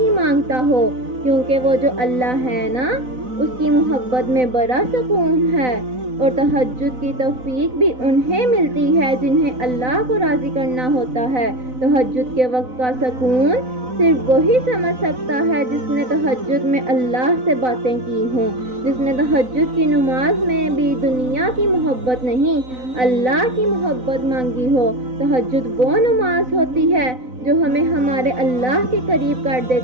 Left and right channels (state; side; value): late; left; 4.0 ms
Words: مانگتا ہو، کیونکہ وہ جو اللہ ہے نا، اس کی محبت میں بڑا سکون ہے۔ اور تہجد کی توفیق بھی انہیں ملتی ہے جنہیں اللہ کو راضی کرنا ہوتا ہے۔ تہجد کے وقت کا سکون صرف وہی سمجھ سکتا ہے جس نے تہجد میں اللہ سے باتیں کی ہوں، جس نے تہجد کی نماز میں بھی دنیا کی محبت نہیں، اللہ کی محبت مانگی ہو۔ تہجد وہ نماز ہوتی ہے جو ہمیں ہمارے اللہ کے قریب کر